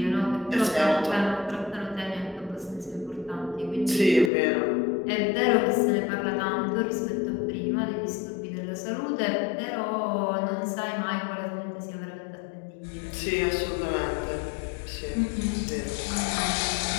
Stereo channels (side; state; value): right; drops out; at 4.3 s